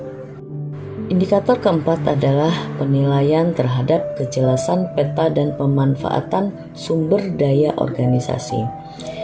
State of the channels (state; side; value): identical; both; correlation 1.00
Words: Indikator keempat adalah penilaian terhadap kejelasan peta dan pemanfaatan sumber daya organisasi.